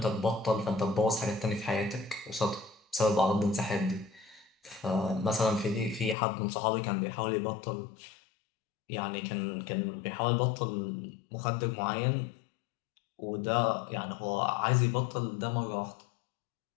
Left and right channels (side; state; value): right; drops out; at 6.2 s